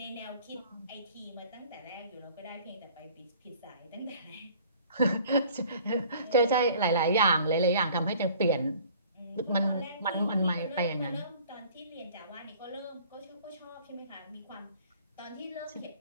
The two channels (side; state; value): both; inverted; correlation -0.51